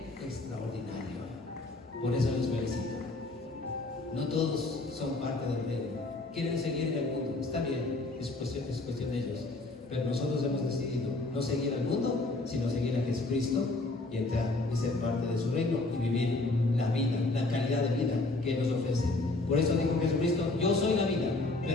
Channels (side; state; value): right; quieter; 3.1 dB